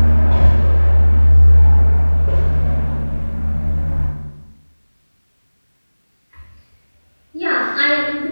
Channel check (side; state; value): both; inverted; correlation -1.00